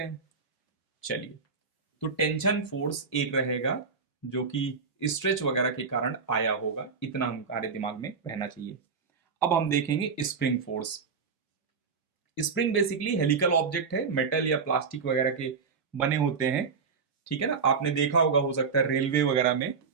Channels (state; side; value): quieter; left; 5.3 dB